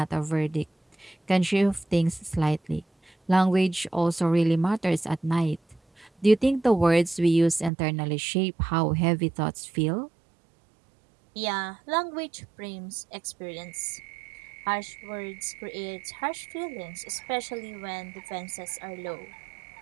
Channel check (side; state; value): left; drops out; at 7.7 s